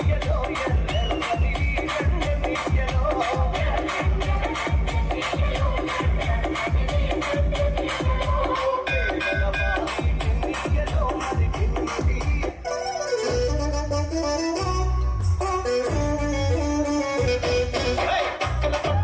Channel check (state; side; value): identical; both; correlation 1.00